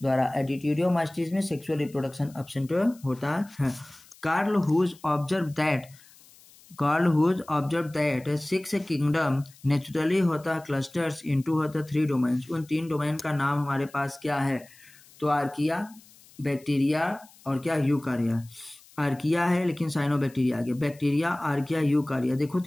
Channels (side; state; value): left; noise; hiss, 25 dB below the sound